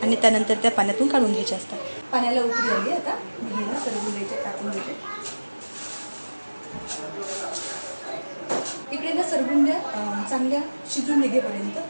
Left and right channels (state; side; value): inverted; both; correlation -1.00